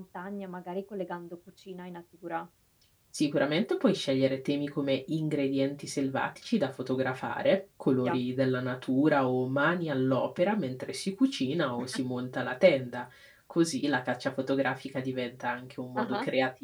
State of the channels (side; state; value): both; identical; correlation 1.00